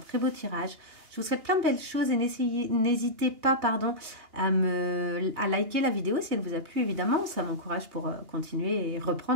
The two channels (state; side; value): late; left; 2.8 ms